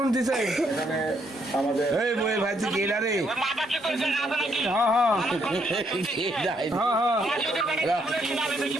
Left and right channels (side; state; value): both; normal; correlation 0.73